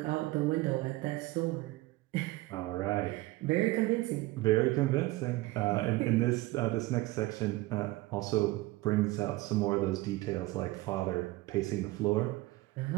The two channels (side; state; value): left; quieter; 19.7 dB